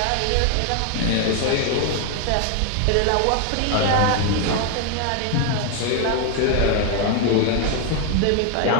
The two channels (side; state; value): both; different; correlation 0.01